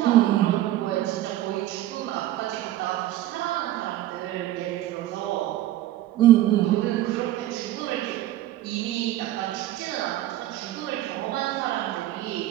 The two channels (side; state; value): left; quieter; 14.2 dB